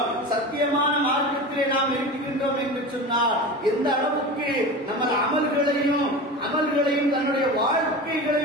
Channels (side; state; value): both; normal; correlation 0.30